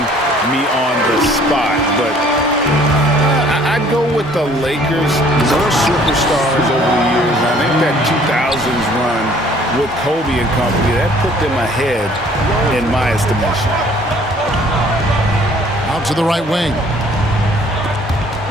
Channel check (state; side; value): normal; both; correlation 0.57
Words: me on the spot, but I'd go with the Lakers. More superstars over the years. I think that 2000s run with Kobe and company, that put them ahead in my estimation. Out to the right wing.